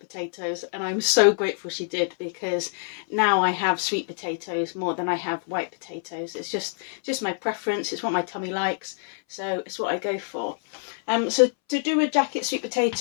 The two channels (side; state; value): right; silent; 61 dB below the other